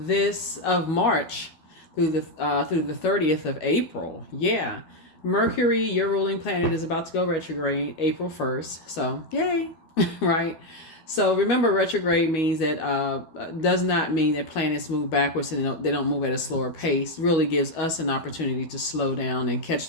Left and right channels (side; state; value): right; late; 12 ms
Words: March through the 30th of April. Yeah. Mercury, your ruling planet, is about to go retrograde April 1st. So, yay. Right? So remember, retrograde means that does not mean that planets move backwards and they don't move at a slower pace. Really gives us an opportunity to slow down and catch